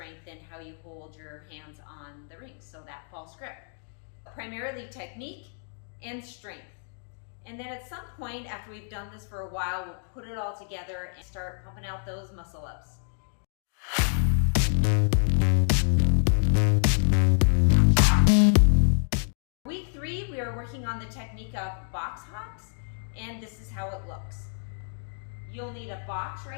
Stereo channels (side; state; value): right; silent; digital silence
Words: and how you hold your hands on the rings, so that false grip. Primarily technique and strength. And then at some point after we've done this for a while, we'll put it all together and start pumping out those muscle ups. Week 3, we are working on the technique of box hops, and this is how it looks. You'll need a box